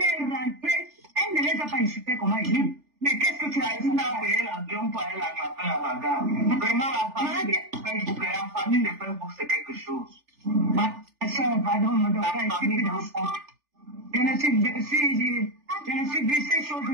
est rentrée, elle ne les a pas insultées comme elle dit. Mais qu'est-ce que tu as dit? Tu as payé l'avion pour aller la taper à la gare. Vraiment, la famille de Facebook, c'est quelque chose. Ma soeur, pardon, me doit pas expliquer dans ça. Je ne suis vu ces choses.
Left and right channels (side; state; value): left; late; 3.4 ms